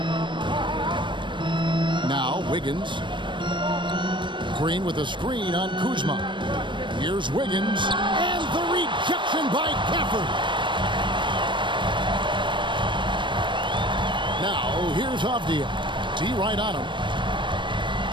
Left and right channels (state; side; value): late; left; 0.23 ms